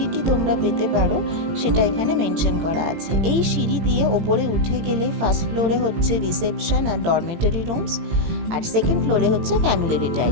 তোমরা পেতে পারো সেটা এখানে মেনশন করা আছে। এই সিঁড়ি দিয়ে ওপরে উঠে গেলে ফার্স্ট ফ্লোরে হচ্ছে রিসেপশন আর ডরমেটরি রুমস, আর সেকেন্ড ফ্লোরে হচ্ছে ফ্যামিলি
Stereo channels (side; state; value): left; late; 18 ms